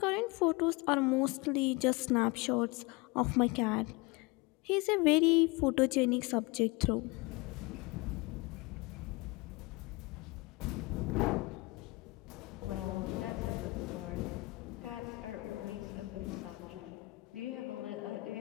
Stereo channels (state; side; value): quieter; right; 24.1 dB